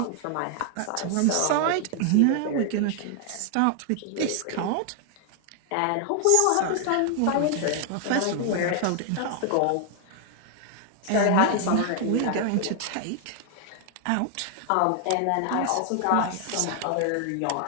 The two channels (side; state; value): both; different; correlation 0.00